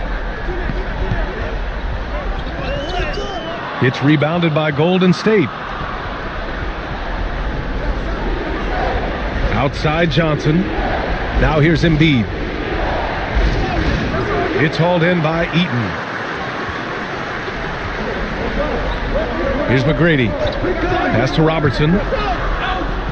It's rebounded by Golden State. Outside Johnson. Now here's Embiid. It's hauled in by Eaton. Here's McGrady. Pass to Robertson.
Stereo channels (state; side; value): identical; both; correlation 1.00